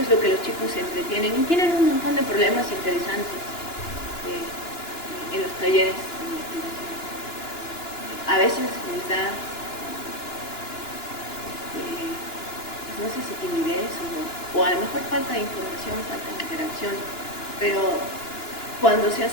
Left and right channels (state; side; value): late; right; 2.9 ms